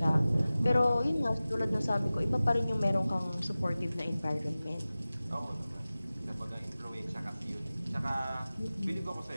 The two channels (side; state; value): both; inverted; correlation -0.97